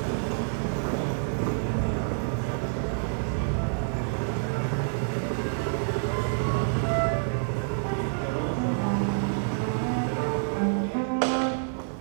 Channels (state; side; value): silent; left; digital silence